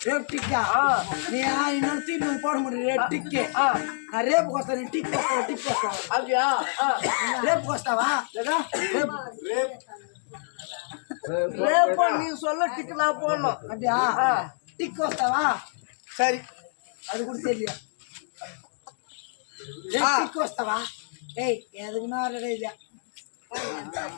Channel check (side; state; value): right; silent; digital silence